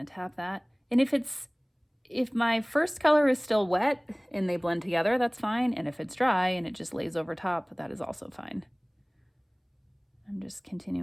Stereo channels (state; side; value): identical; both; correlation 1.00